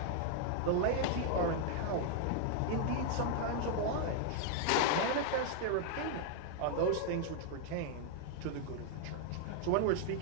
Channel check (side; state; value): both; different; correlation 0.00